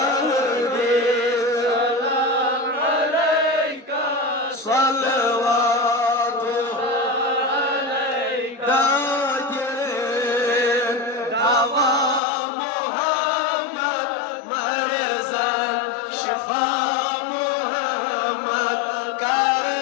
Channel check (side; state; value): right; drops out; at 12.2 s